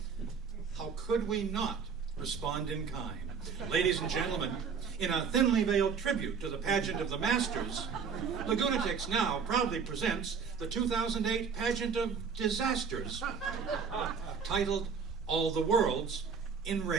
How could we not respond in kind? Ladies and gentlemen, in a thinly veiled tribute to the pageant of the Masters, Lagunatics now proudly presents the 2008 Pageant of Disasters, titled All the World's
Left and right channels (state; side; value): quieter; left; 6.0 dB